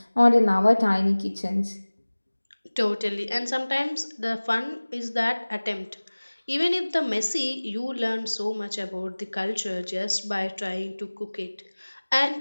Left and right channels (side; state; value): both; inverted; correlation -1.00